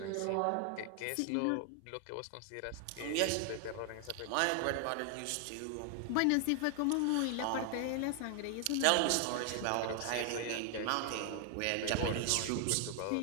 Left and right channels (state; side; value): different; both; correlation 0.00